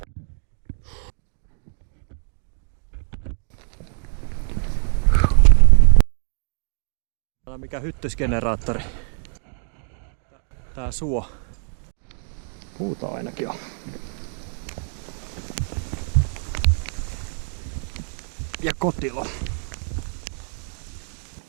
Tää on mikä hyttysgeneraattori. Tää suo. Puuta ainakin on. Ja kotilo.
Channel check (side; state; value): left; silent; 63 dB below the other